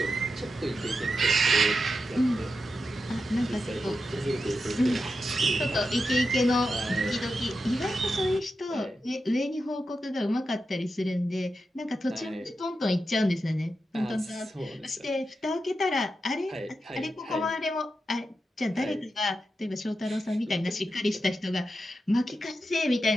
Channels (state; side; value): normal; both; correlation 0.88